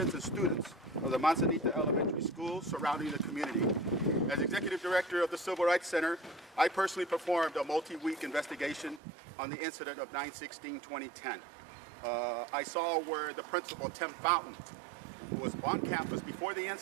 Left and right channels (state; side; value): drops out; left; at 9.0 s